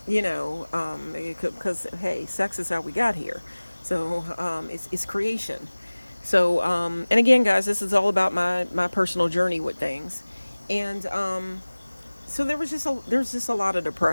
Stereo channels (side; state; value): both; inverted; correlation -1.00